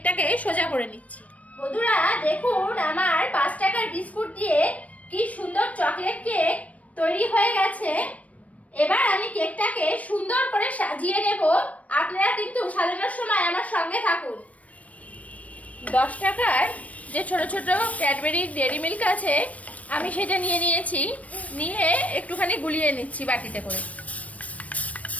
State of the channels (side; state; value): right; late; 0.067 ms